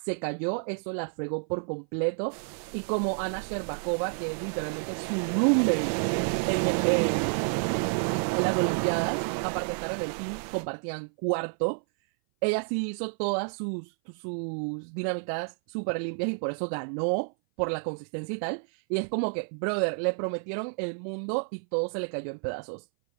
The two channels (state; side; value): silent; left; 57 dB below the other